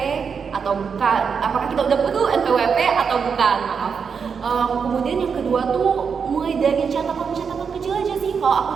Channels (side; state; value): left; quieter; 6.2 dB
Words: atau bukan? Apakah kita udah perlu NPWP atau bukan? Maaf. Kemudian yang kedua tuh mulai dari catatan kecil aja sih. Kalau aku